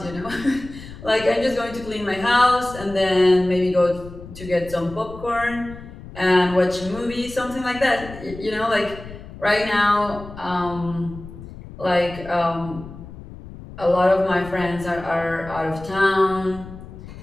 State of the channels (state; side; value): noise; left; rumble, 15 dB below the sound